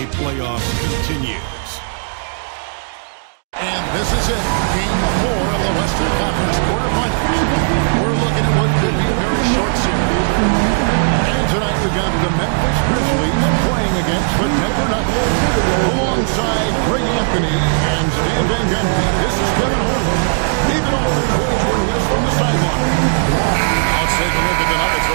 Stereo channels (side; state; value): left; silent; digital silence